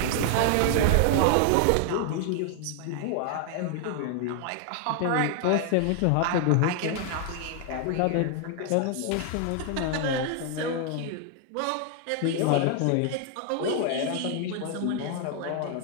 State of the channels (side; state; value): both; different; correlation 0.00